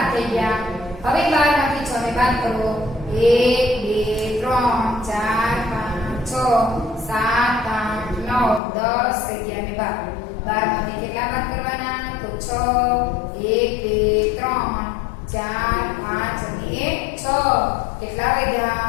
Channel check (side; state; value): right; drops out; at 8.6 s